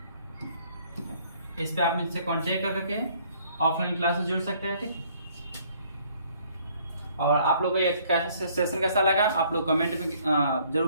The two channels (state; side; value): inverted; both; correlation -0.62